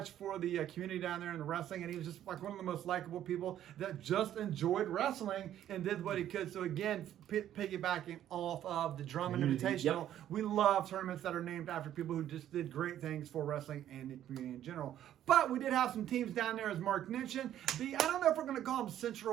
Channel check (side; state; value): left; quieter; 11.5 dB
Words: for the community down there in the wrestling, and he was just like one of the most likable people that just enjoyed wrestling and did what he could. So again, piggybacking off of the Drummond Invitational, we love tournaments that are named after people who just did great things for wrestling and the community in general. But we did have some teams down there, as Mark mentioned. I don't know if we're going to call them